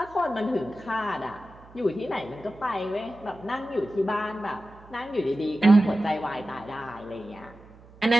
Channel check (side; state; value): right; noise; hum, 23 dB below the sound